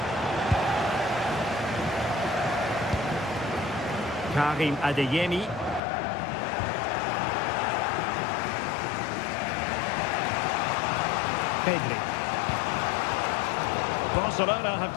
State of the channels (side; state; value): right; drops out; at 5.8 s